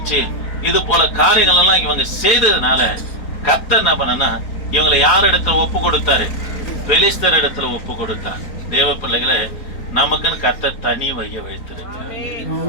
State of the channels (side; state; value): right; late; 4.3 ms